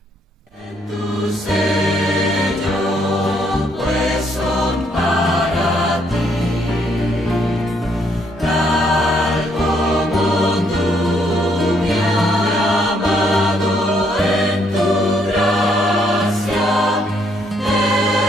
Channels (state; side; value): normal; both; correlation 0.71